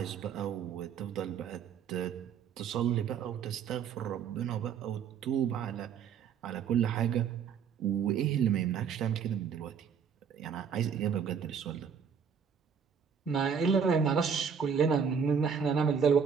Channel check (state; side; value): quieter; left; 7.0 dB